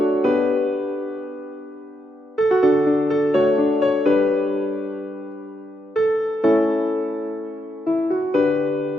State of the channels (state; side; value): normal; both; correlation 0.82